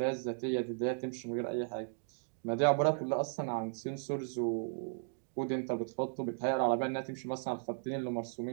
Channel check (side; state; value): left; silent; digital silence